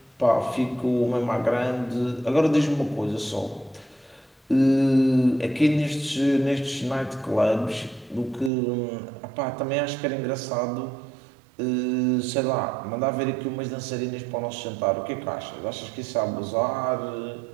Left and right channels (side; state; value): left; drops out; at 8.5 s